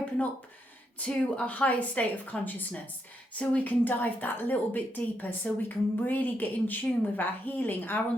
up to a higher state of consciousness, so we can dive that little bit deeper, so we can really get in tune with our healing, our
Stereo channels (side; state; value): both; normal; correlation 0.79